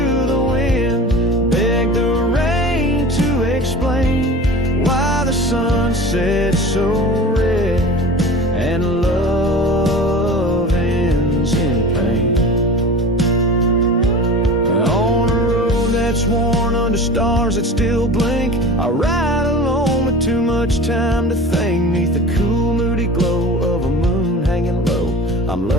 the wind, begged the rain to explain why the sun set so red and love ends in pain. On a road that's worn under stars that still blink, I ride alone with too much time to think. Neath the cool moody glow of a moon hanging low, I'm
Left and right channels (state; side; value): normal; both; correlation 0.36